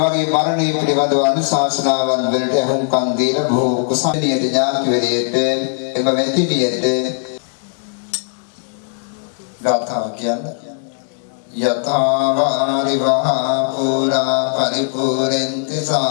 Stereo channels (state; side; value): silent; right; 67 dB below the other